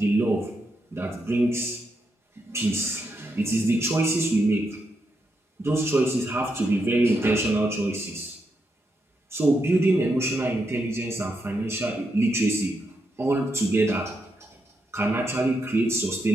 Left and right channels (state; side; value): normal; both; correlation 0.82